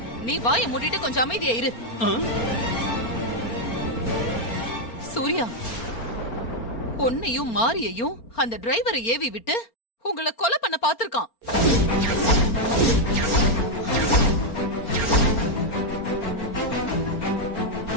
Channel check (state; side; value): late; right; 4.3 ms